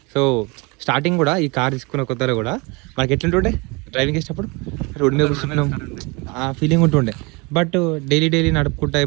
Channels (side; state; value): left; quieter; 27.8 dB